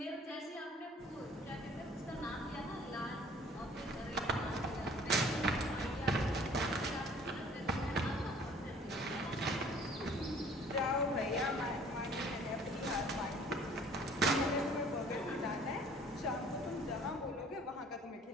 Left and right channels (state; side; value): normal; both; correlation 0.53